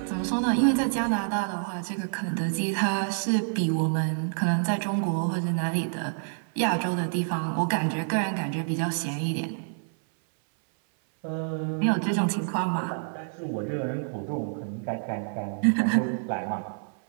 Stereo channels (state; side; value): silent; left; 60 dB below the other